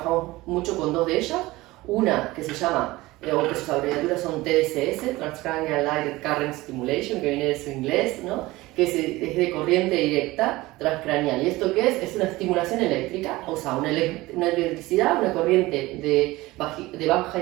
mucho con 2 de ellas. Una que se llama, o que sus abreviaturas son TDCS, Transcranial Direct Current Stimulation, que viene de su inglés, ¿no? Que es de corriente directa transcranial. ¿Y esto qué es? Es una estimulación eléctrica, o sea, una electricidad, una corriente de baja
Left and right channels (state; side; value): quieter; left; 19.5 dB